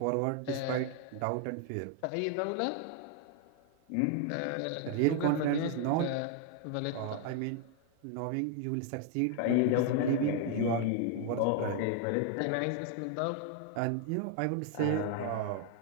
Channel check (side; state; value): both; different; correlation 0.01